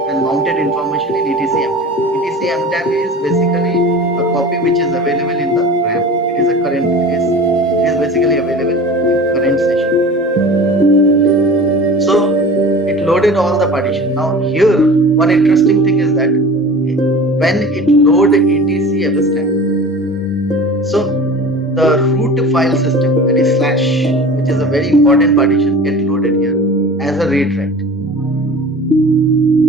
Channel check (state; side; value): normal; both; correlation 0.38